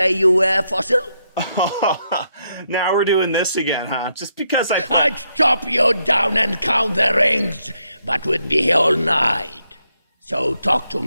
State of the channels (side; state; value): both; inverted; correlation -0.79